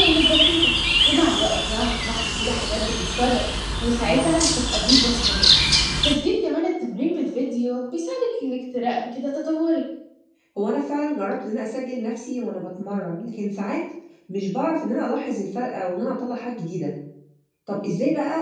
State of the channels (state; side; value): identical; both; correlation 1.00